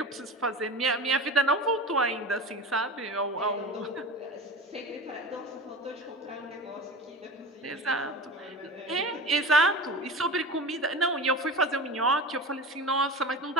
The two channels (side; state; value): both; normal; correlation 0.31